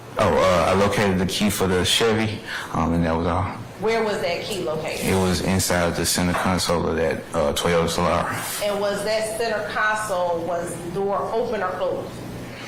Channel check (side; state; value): both; identical; correlation 1.00